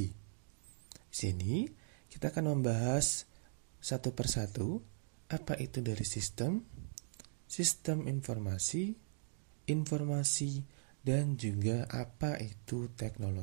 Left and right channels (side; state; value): left; silent; digital silence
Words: Di sini kita akan membahas satu persatu apa itu dari sistem, sistem informasi, informasi, dan juga apa itu